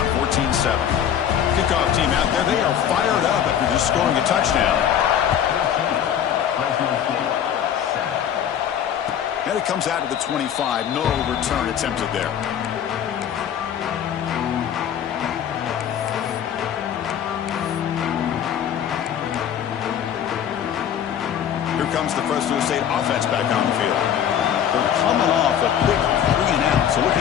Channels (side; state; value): right; quieter; 9.4 dB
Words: 14-7. Kickoff team out there. They are fired up after just scoring a touchdown. And it comes out to the 25. No return attempted there. Here comes the Fresno State offense back on the field. They're coming off a quick 3-and-out, so